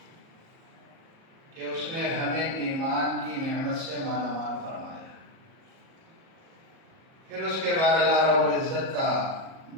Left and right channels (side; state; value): left; late; 37 ms